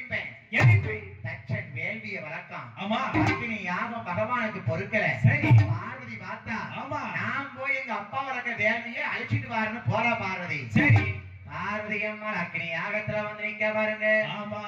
எதுக்கு? தச்சன் வேள்விய வளர்க்கான். ஆமா. அக்கினி யாகம் பகவானுக்கு பொறுக்கல. சரி. பார்வதி பார்த்தா, ஆமா. நான் போய் எங்க அப்பா வளர்க்க வேள்வியை அழிச்சிட்டு வாருன்னு போறா பார்வதி. சரி. பார்வதி அம்மா அக்கினி யாகத்துல வந்து நிக்க பாருங்க. ஆமா.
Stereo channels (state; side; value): identical; both; correlation 1.00